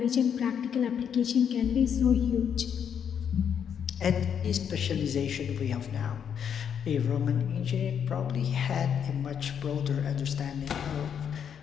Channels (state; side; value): quieter; right; 8.0 dB